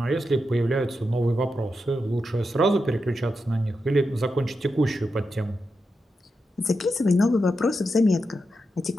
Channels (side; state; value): both; normal; correlation 0.87